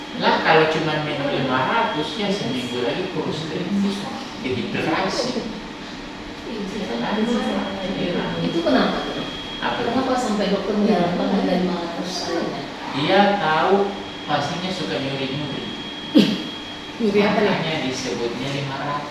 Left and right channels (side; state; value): both; identical; correlation 1.00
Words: Lah kalau cuma minum 500 ya seminggu lagi kurus kering, dehidrasi. Itu kenapa? Apa? Kenapa sampai dokter menyarankan ada 500 airnya? Dia tahu pastinya suka nyuri-nyuri. Nyuri apa nih? Makanya disebutnya